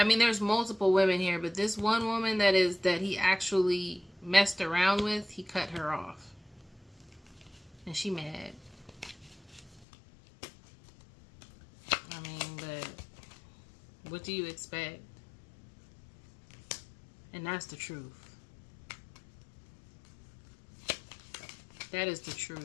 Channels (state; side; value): drops out; right; at 9.9 s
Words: mean, there's multiple women here, but this one woman that he actually messed around with, he cut her off. And she mad. I mean, but what do you expect? And that's the truth. That is the